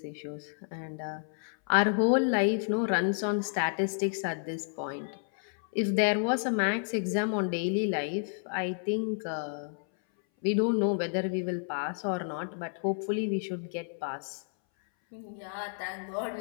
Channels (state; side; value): silent; right; 57 dB below the other